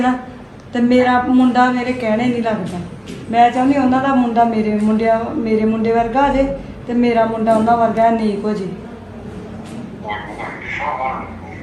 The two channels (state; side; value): identical; both; correlation 1.00